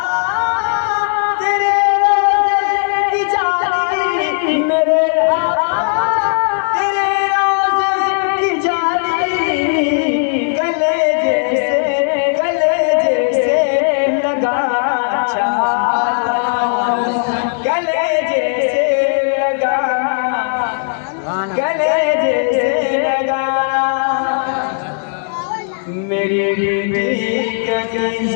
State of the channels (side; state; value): right; silent; digital silence